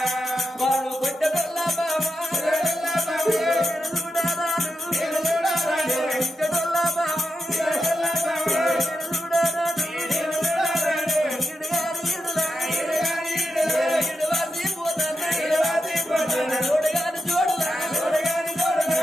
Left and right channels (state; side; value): normal; both; correlation 0.87